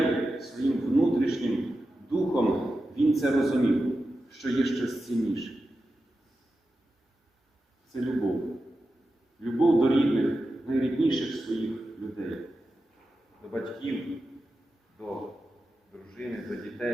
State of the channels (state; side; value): normal; both; correlation 0.91